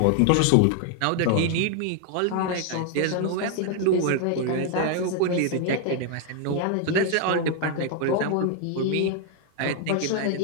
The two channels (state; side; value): different; both; correlation 0.00